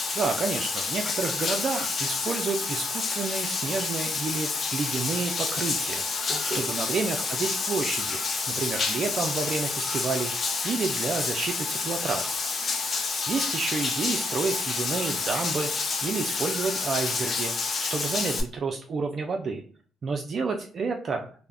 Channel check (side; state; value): both; normal; correlation 0.74